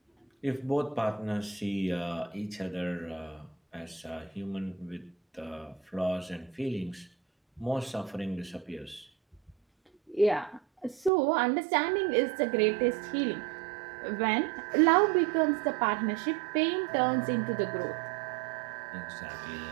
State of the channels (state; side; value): drops out; left; at 11.1 s